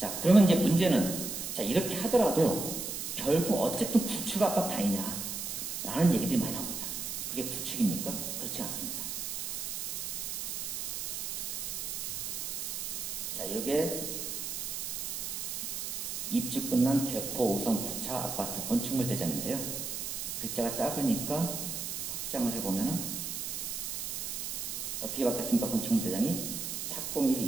그러면 이제 문제는 자 이렇게 하더라도 결국 어쨌든 구축 아파트 아니냐 라는 얘기들이 많이 나옵니다. 이게 구축입니까? 그렇지 않습니다. 자, 이게 입주 끝난 개포 5성 9차 아파트 건축물 대장인데요. 글자가 작으니까 확장을 해보면은 어떻게 바뀌었습니까? 건축물 대장이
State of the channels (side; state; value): right; noise; hiss, 4 dB below the sound